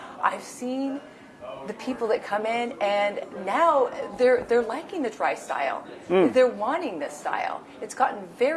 I've seen the people that come in, and now they're liking the dry style. They're wanting this style. It's gotten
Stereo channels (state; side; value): identical; both; correlation 1.00